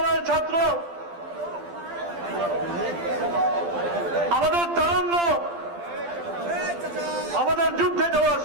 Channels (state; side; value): late; left; 12 ms